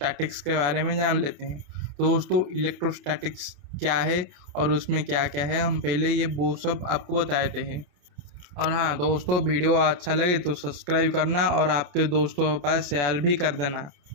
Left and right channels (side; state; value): left; late; 28 ms